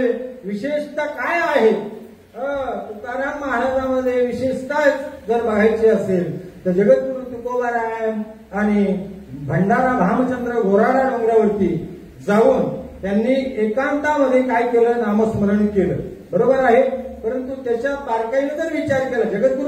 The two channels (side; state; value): both; identical; correlation 1.00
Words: विशेषता काय आहे? तुकाराम महाराजांमध्ये विशेषता जर बघायची असेल तर जगद्गुरु तुकोबाराय आणि भंडारा भामचंद्र घोराडा डोंगरावरती जाऊन त्यांनी एकांतामध्ये काय केलं? नामस्मरण केलं. बरोबर आहे. परंतु त्याच्या बारकाईने जर विचार केला,